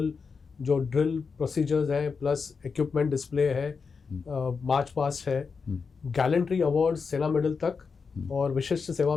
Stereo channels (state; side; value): quieter; right; 5.3 dB